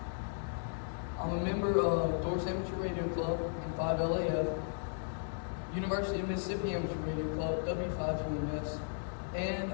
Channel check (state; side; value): silent; right; digital silence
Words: I'm a member of Doors Amateur Radio Club and 5LAF, University of Mississippi Amateur Radio Club, W5UMS, and